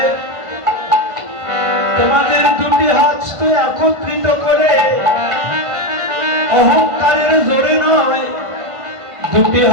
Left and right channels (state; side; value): late; left; 1.5 ms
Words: তোমাদের দুটি হাত একত্রিত করে অহংকারের জোরে নয়, দুটি